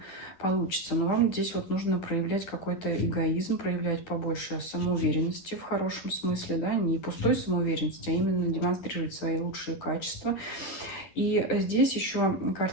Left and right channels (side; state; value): right; late; 10 ms